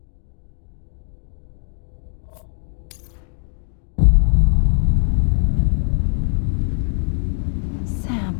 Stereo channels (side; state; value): right; silent; 56 dB below the other